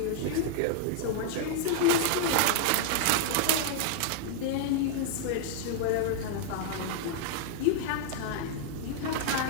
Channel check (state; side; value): different; both; correlation -0.01